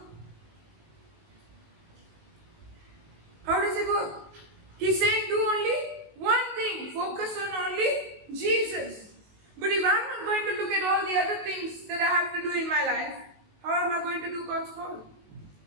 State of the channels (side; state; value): left; late; 19 ms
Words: How does it work? He's saying do only one thing. Focus on only Jesus. But if I'm not going to look at all the other things that I have to do in my life, how am I going to do God's call?